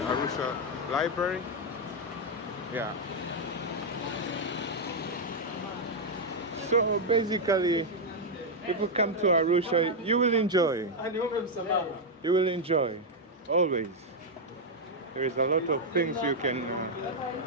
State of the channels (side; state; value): both; normal; correlation 0.00